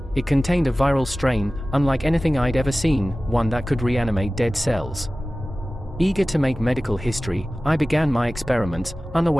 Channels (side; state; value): both; normal; correlation 0.96